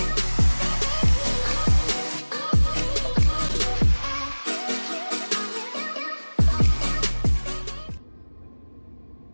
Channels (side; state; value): both; inverted; correlation -1.00